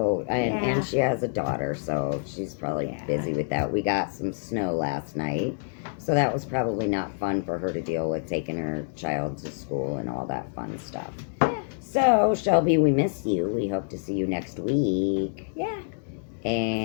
Yeah. and she has a daughter, so she's probably busy with that. We got some snow last night, so that was probably not fun for her to deal with, taking her child to school and all that fun stuff. Yeah. So Shelby, we miss you. We hope to see you next week. Yeah.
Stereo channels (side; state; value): right; silent; digital silence